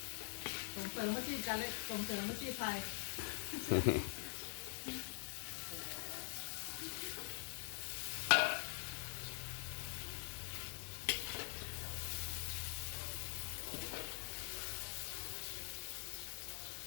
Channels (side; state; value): right; silent; digital silence